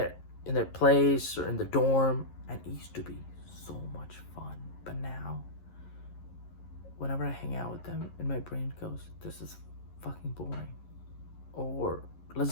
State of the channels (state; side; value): late; right; 11 ms